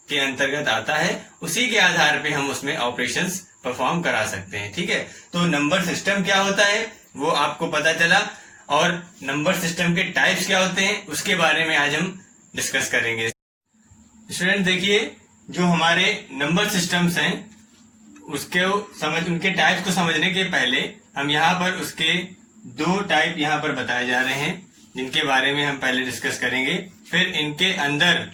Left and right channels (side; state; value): both; identical; correlation 1.00